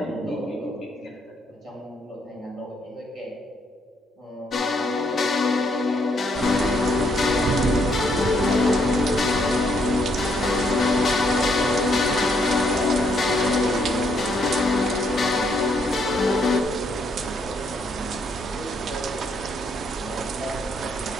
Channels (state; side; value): normal; both; correlation 0.72